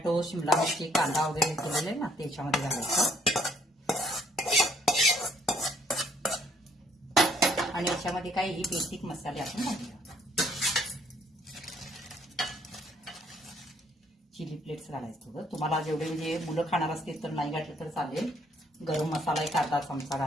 शिमला मिरची, कांदा वगैरे केलेले आहे ना, ते याच्यामध्ये घालायचं. आणि याच्यामध्ये काही बेसिक मसाले आपण घालूया. चिली फ्लेक्स घालायचं थोडं. तुम्हाला जेवढे म्हणजे मुलं खाणार असतील तर नाही घातलं तर चालेल. गरम मसाला 1 अर्धा चमचा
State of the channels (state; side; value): normal; both; correlation 0.65